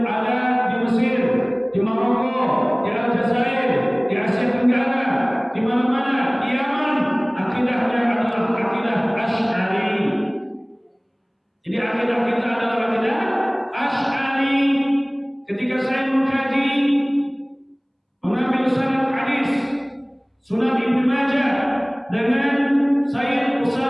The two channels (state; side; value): identical; both; correlation 1.00